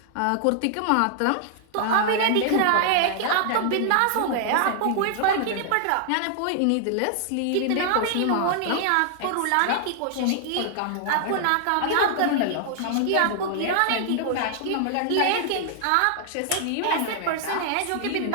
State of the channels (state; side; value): different; both; correlation -0.01